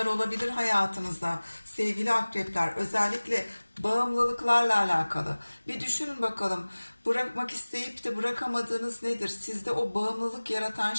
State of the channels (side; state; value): both; inverted; correlation -1.00